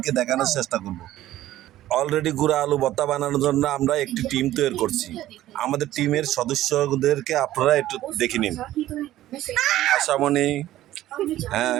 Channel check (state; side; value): quieter; left; 14.2 dB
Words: দেখানোর চেষ্টা করব। অলরেডি গুঁড়া আলু ভর্তা বানানোর জন্য আমরা একটি টিম তৈরি করছি। আমাদের টিমের সদস্যদেরকে আপনারা একটু দেখে নিন। আশামণি,